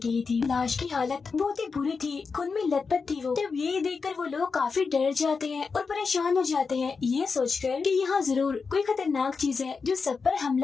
ही थी। लाश की हालत बहुत ही बुरी थी, खून में लथपथ थी वो। तब ये देखकर वो लोग काफी डर जाते हैं और परेशान हो जाते हैं, ये सोचकर कि यहाँ जरूर कोई खतरनाक चीज है जो सब पर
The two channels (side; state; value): right; quieter; 5.0 dB